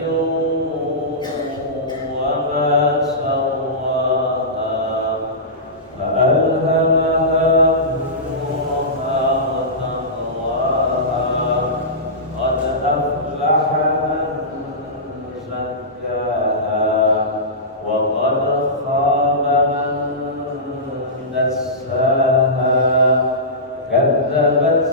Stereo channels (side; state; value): both; normal; correlation -0.18